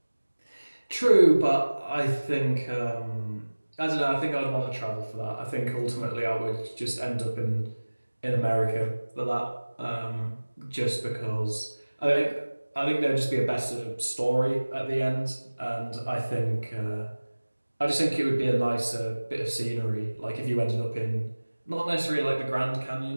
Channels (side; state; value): both; inverted; correlation -1.00